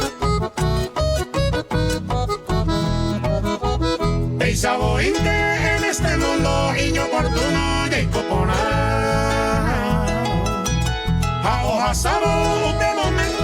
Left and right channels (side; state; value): both; identical; correlation 1.00